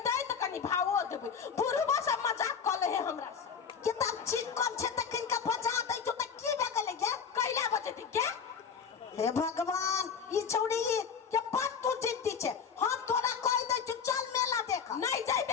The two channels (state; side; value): quieter; right; 6.6 dB